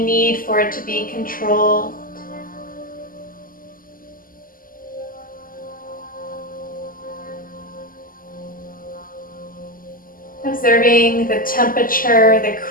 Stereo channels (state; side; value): late; right; 0.41 ms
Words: need for it to be controlled. Observing the temperature, the